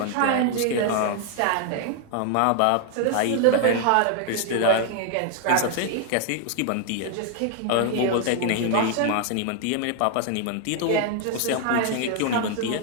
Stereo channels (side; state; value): both; different; correlation 0.00